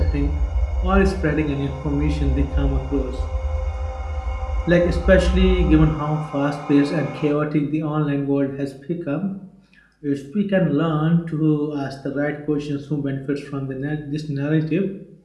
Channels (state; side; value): identical; both; correlation 1.00